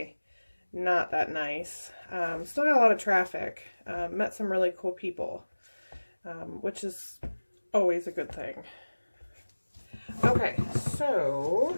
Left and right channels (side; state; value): both; inverted; correlation -1.00